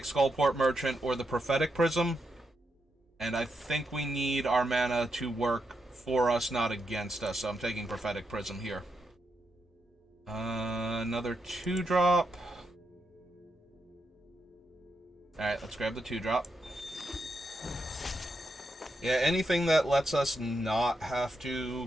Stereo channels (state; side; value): normal; both; correlation 0.84